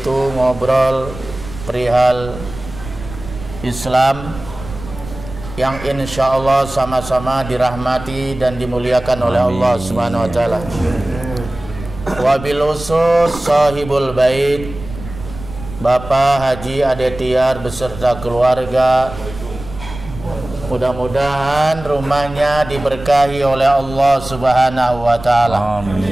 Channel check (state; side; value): noise; right; rumble, 13 dB below the sound